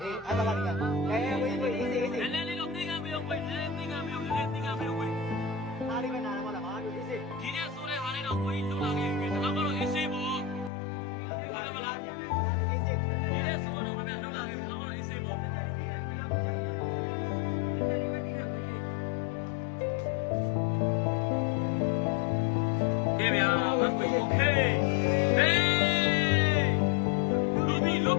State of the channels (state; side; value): drops out; right; at 10.7 s